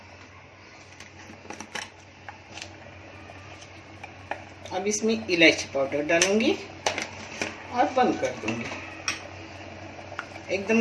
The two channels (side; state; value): both; identical; correlation 1.00